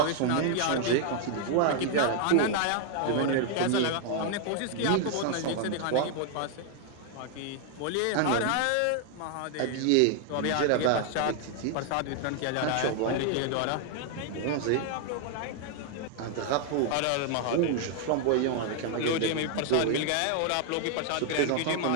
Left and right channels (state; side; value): different; both; correlation 0.00